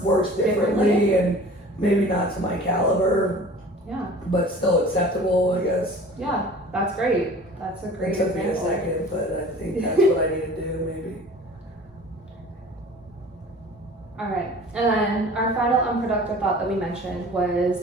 differently and maybe not to my caliber. Yeah. But still acceptable, I guess. Yeah, that's great. That's a great It took me a example. second, but I think that's what I need to do, maybe. All right. And then our final unproductive thought that we mentioned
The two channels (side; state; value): both; normal; correlation 0.44